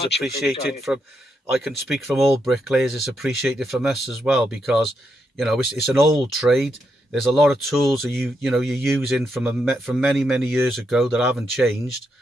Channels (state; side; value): normal; both; correlation 0.81